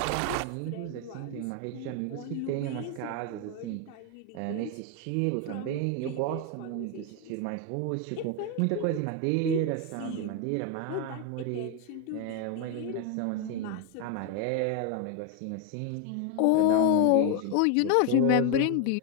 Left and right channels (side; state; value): both; different; correlation 0.01